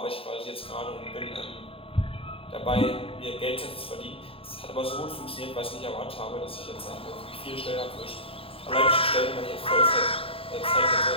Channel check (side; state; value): right; late; 0.27 ms